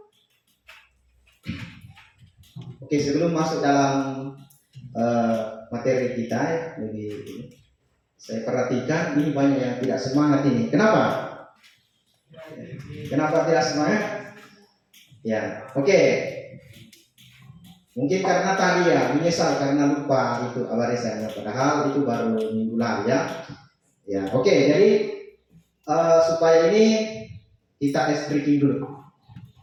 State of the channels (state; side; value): identical; both; correlation 1.00